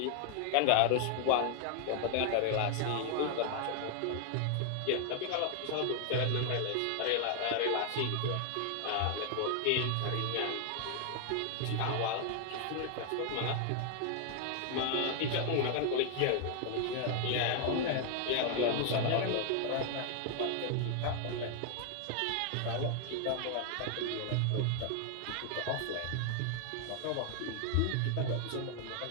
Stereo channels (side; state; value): both; different; correlation 0.00